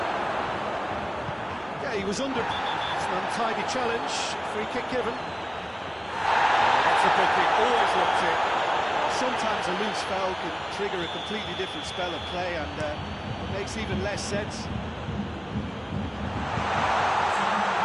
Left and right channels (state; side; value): identical; both; correlation 1.00